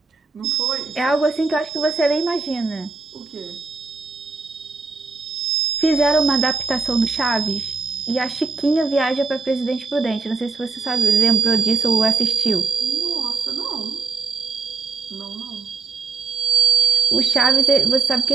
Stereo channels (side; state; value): left; quieter; 4.4 dB